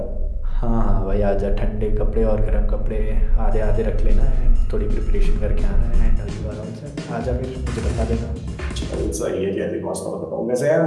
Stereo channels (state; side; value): identical; both; correlation 1.00